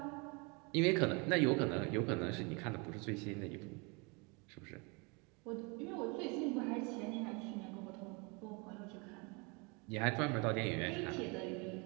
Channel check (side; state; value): left; quieter; 30.4 dB